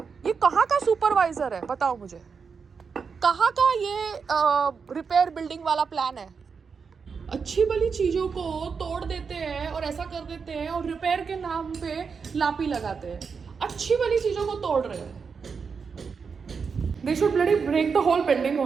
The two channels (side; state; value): left; quieter; 5.6 dB